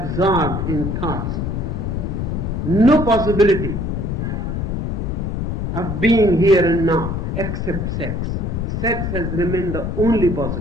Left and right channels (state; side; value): noise; left; rumble, 2 dB below the sound